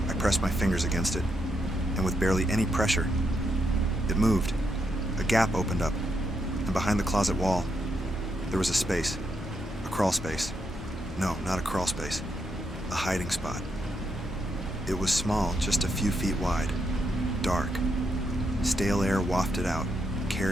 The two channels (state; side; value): normal; both; correlation 0.80